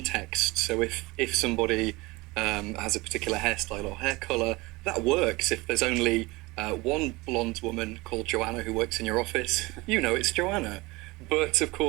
So if somebody has a particular hairstyle or hair colour, that works. If there's only one blonde woman called Joanna who works in your office, it's Joanna. But of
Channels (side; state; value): left; quieter; 22.7 dB